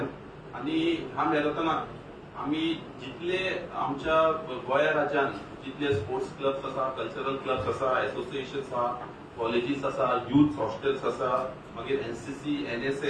आणि ह्या मॅरेथॉनात आम्ही जितले आमच्या गोंया राज्यात जितले स्पोर्ट्स क्लब्स आसा, कल्चरल क्लब्स आसा, एसोसिएशन्स आसा, कॉलेजीस आसा, युथ हॉस्टेल्स आसा, मागीर एनसीसी,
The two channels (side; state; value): both; identical; correlation 1.00